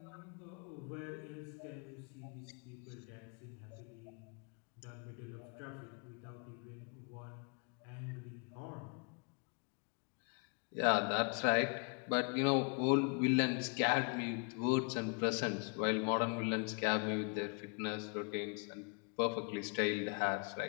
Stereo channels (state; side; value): quieter; right; 36.4 dB